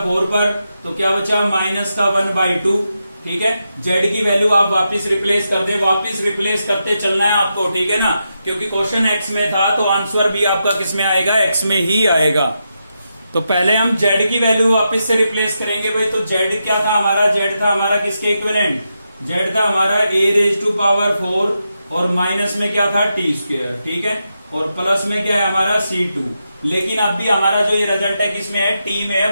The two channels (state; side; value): inverted; both; correlation -0.86